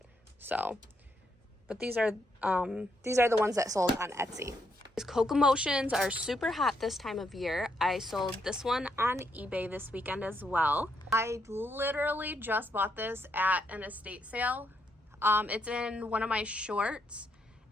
So, but these are the ones that sold on Etsy. These Cocoa Motions are super hot this time of year. I sold this one on eBay this weekend as well. I literally just bought this at an estate sale. It's in one of my shorts.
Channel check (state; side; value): normal; both; correlation 0.77